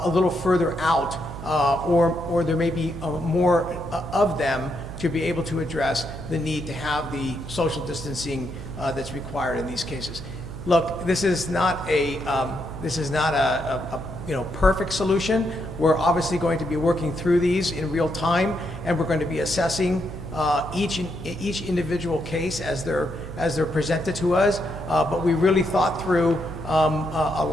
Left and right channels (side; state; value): right; noise; hum, 11 dB below the sound